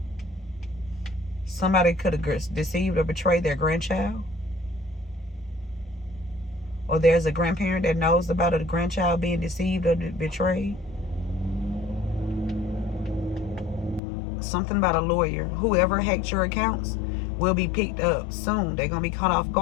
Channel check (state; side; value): drops out; right; at 14.0 s